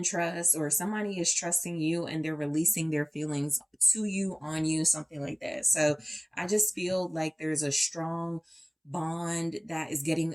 trust, or somebody is trusting you and they're releasing their feelings to you, on you, something like that. So I just feel like there's a strong bond that is getting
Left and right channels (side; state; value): both; identical; correlation 1.00